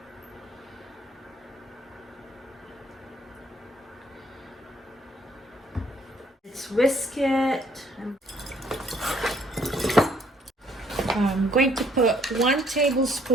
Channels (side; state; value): both; normal; correlation 0.65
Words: whisk it. I'm going to put 1